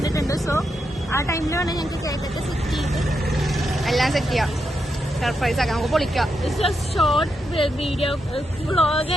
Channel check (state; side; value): normal; both; correlation 0.84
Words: സോ ആ ടൈമിൽ വേണം ഞങ്ങൾക്ക് കേക്കൊക്കെ സെറ്റ് ചെയ്ത് എല്ലാം സെറ്റ് ചെയ്യാം. സർപ്രൈസ് ആക്കാം, നമുക്ക് പൊളിക്കാം. ഷോർട്ട് വീഡിയോ വ്ളോഗ്